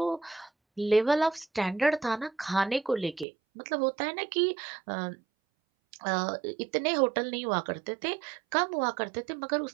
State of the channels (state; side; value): drops out; left; at 3.2 s